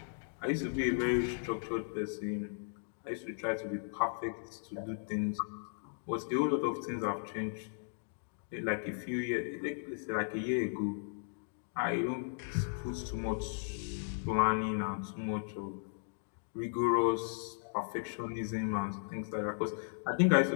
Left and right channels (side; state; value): right; silent; digital silence